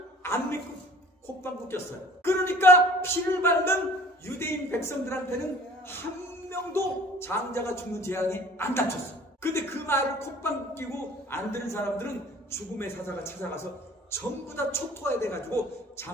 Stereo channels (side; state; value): both; normal; correlation 0.48